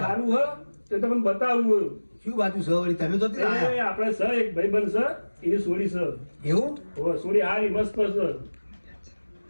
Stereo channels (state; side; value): inverted; both; correlation -1.00